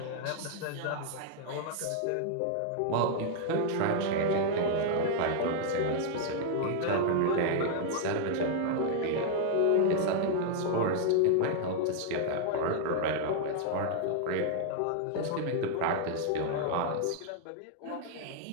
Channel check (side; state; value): both; different; correlation -0.01